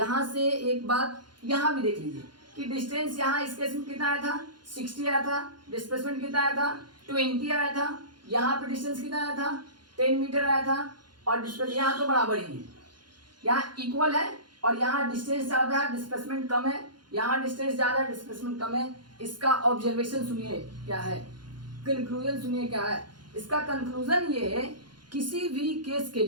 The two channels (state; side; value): late; left; 0.71 ms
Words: से एक बात यहाँ भी देख लीजिए कि डिस्टेंस यहाँ इस केस में कितना आया था 60 आया था, डिस्प्लेसमेंट कितना आया था 20 आया था। यहाँ पे डिस्टेंस कितना आया था 10 मीटर आया था और डिस्प्लेस यहाँ तो बराबर ही है, यहाँ इक्वल है और यहाँ डिस्टेंस ज़्यादा है डिस्प्लेसमेंट कम है, यहाँ डिस्टेंस ज़्यादा है डिस्प्लेसमेंट कम है। इसका ऑब्जर्वेशन सुनिए क्या है, कंक्लूजन सुनिए क्या है। इसका कंक्लूजन ये है किसी भी केस के